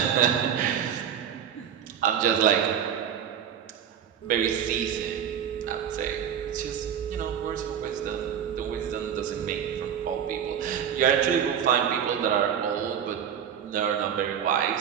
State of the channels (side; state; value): left; quieter; 8.7 dB